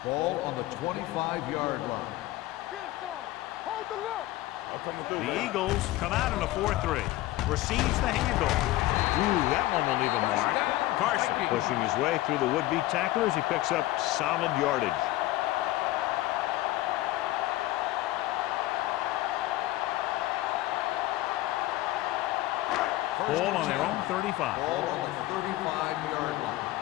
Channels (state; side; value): quieter; right; 16.9 dB